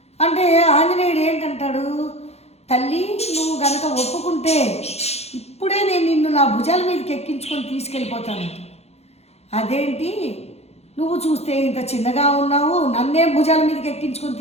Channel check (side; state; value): right; late; 0.31 ms